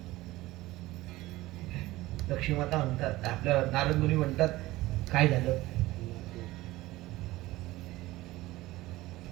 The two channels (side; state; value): left; quieter; 18.1 dB